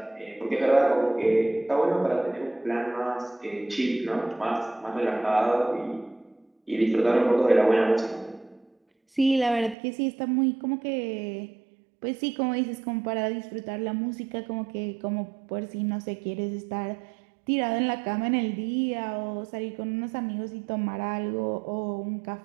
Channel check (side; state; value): left; drops out; at 9.8 s